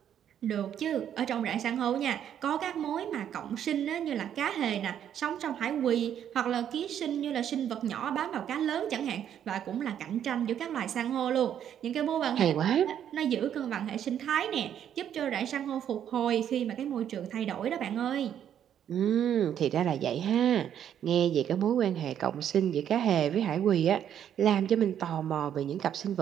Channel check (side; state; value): left; quieter; 9.7 dB